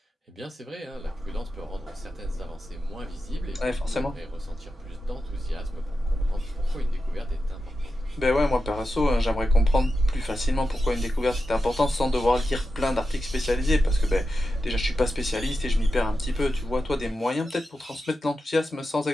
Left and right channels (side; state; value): both; normal; correlation 0.90